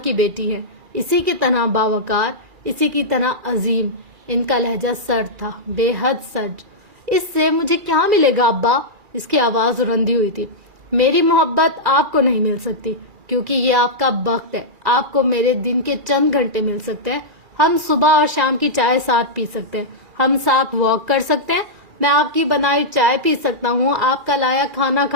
بیٹی ہیں، اسی کی طرح باوقار، اسی کی طرح عظیم۔ ان کا لہجہ سرد تھا، بے حد سرد۔ اس سے مجھے کیا ملے گا ابا؟ اس کی آواز رندی ہوئی تھی۔ میری محبت آپ کو نہیں مل سکتی، کیونکہ یہ آپ کا وقت ہے، آپ کو میرے دن کے چند گھنٹے مل سکتے ہیں۔ ہم صبح اور شام کی چائے ساتھ پی سکتے ہیں، ہم ساتھ واک کر سکتے ہیں، میں آپ کی بنائی چائے پی سکتا ہوں، آپ کا لایا کھانا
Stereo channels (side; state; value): left; late; 2.4 ms